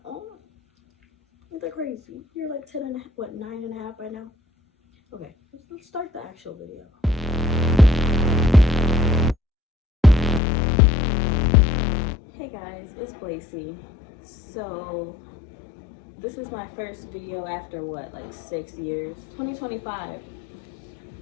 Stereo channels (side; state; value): right; drops out; at 10.4 s